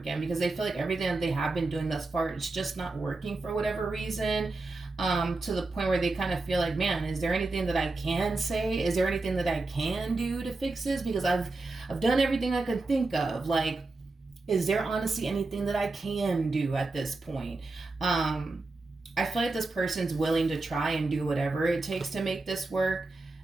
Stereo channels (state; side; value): quieter; left; 3.4 dB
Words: because they feel like everything that they have been doing thus far, it's just not working for whatever reason. To the point where they kind of feel like, man, is there anything that I can say? Is there anything that I can do to fix this? Because I've done everything I could think of. Like, is there honestly anything that I can do at this point? I feel like this person's willing to try and do whatever it takes to make this work.